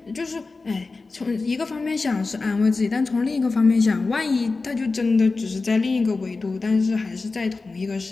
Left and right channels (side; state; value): right; quieter; 3.8 dB